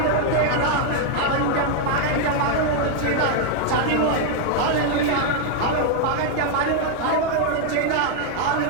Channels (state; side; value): different; both; correlation 0.00